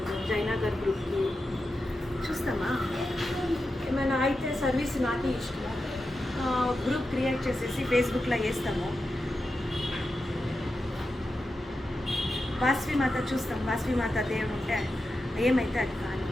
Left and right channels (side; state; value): both; normal; correlation 0.90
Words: జయనగర్ గ్రూప్కి చూస్తామా ఏమైనా అయితే సర్వీస్ నాకే ఇష్టము గ్రూప్ క్రియేట్ చేసేసి ఫేస్బుక్లో వేస్తాము వాసవి మాత చూస్తాం వాసవి మాత దేవుడు ఉంటే ఏమైతే అది కానీ